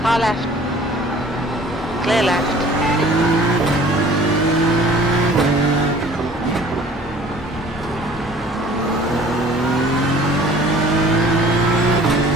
Car left. Clear left.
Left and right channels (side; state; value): both; normal; correlation 0.50